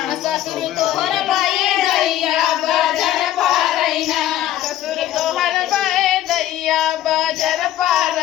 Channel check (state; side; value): quieter; right; 13.0 dB